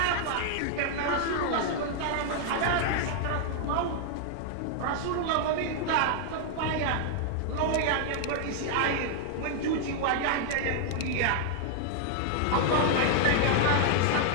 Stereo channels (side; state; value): both; different; correlation -0.01